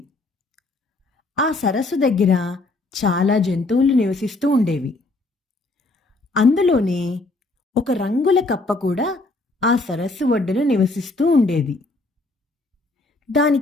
ఆ సరస్సు దగ్గర చాలా జంతువులు నివసిస్తూ ఉండేవి. అందులోనే ఒక రంగుల కప్ప కూడా ఆ సరస్సు ఒడ్డున నివసిస్తూ ఉండేది.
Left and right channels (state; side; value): quieter; right; 3.1 dB